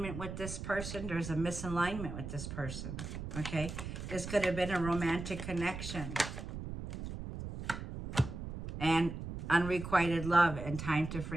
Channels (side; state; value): right; noise; rumble, 7 dB below the sound